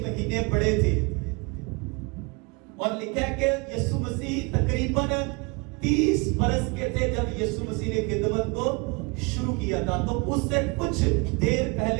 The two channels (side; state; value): left; quieter; 29.3 dB